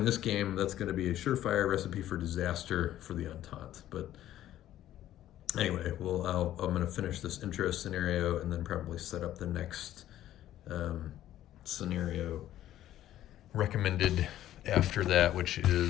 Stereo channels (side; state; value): right; quieter; 12.8 dB